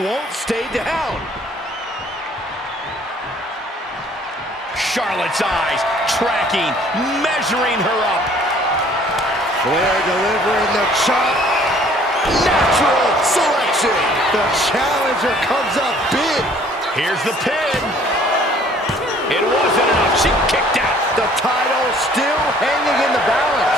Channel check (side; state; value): both; normal; correlation 0.56